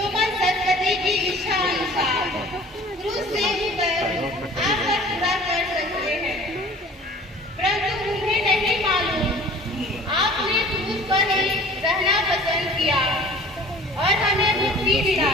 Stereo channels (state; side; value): normal; both; correlation 0.47